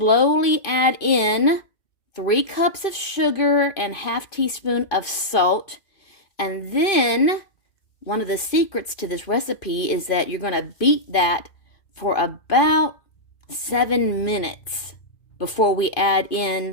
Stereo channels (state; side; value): late; right; 2.5 ms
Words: add in 3 cups of sugar and ½ teaspoon of salt. And then one of the secrets to this recipe is that you're going to beat that for about 7 minutes before we add